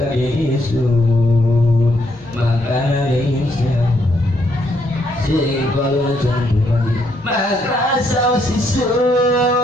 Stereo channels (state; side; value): normal; both; correlation 0.74